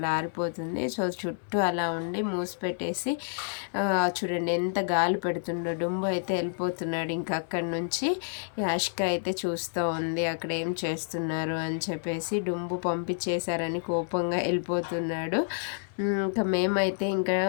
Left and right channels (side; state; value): right; silent; digital silence